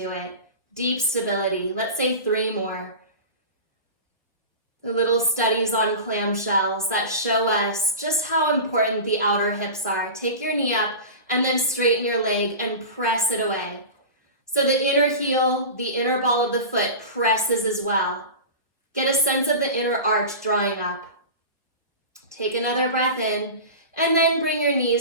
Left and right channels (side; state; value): both; inverted; correlation -0.30